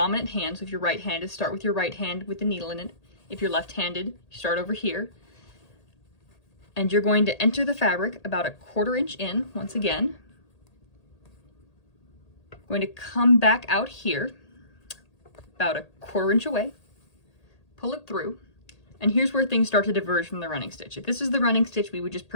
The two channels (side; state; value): right; late; 1.8 ms